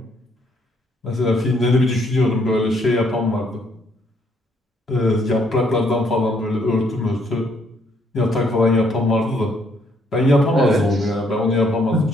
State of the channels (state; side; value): normal; both; correlation 0.69